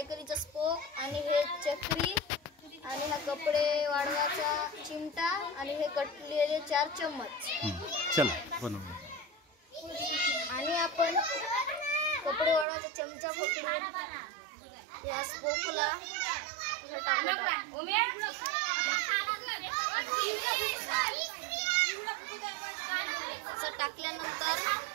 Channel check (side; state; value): left; drops out; at 12.7 s